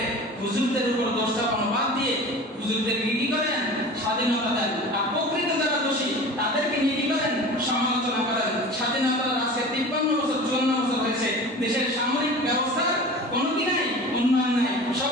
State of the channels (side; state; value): both; normal; correlation 0.37